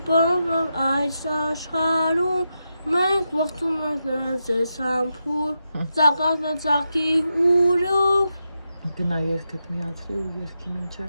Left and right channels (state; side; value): inverted; both; correlation -0.86